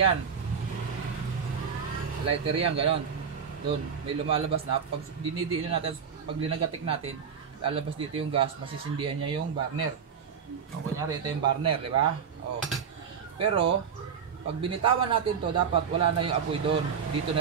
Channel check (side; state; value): left; quieter; 6.9 dB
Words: Lighter yan. Ganon. Doon. May lumalabas na. Pag dinidiin natin, pag linagatik natin, lalabas dito yung gas, masisindihan niya yung burner. O, kunyari, ito yung burner, di ba? O. Pero, pag binitawan natin to, dapat wala na yung apoy doon. Dito